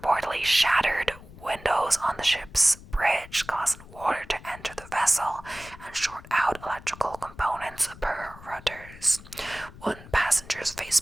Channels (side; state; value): left; noise; rumble, 18 dB below the sound